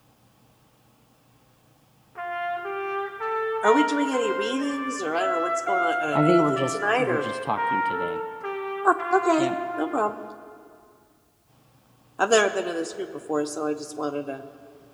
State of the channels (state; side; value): identical; both; correlation 1.00